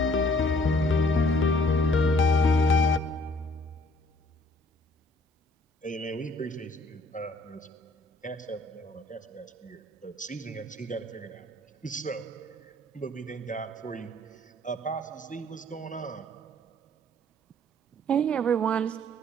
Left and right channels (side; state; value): both; normal; correlation 0.59